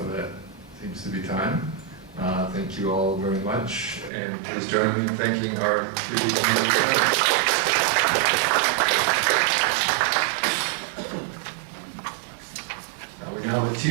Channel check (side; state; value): left; drops out; at 4.1 s